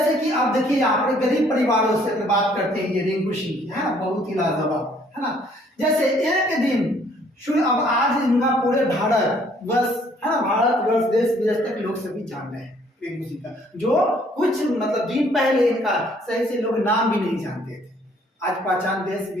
कि आप देखिए यहाँ पर गरीब परिवारों से बात करते हैं, ये रिंकू सिंह की, है ना, बहुत ही लाजवाब, है ना। जैसे एक दिन अब आज इनका पूरे भारत वर्ष, है ना, भारत वर्ष देश विदेश तक लोग सभी जान रहे हैं रिंकू सिंह का, जो कुछ मतलब दिन पहले इनका सही से लोग नाम भी नहीं जानते थे, आज पहचान देश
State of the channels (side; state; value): both; normal; correlation 0.62